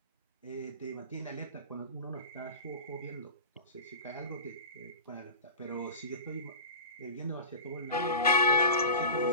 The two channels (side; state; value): both; inverted; correlation -0.30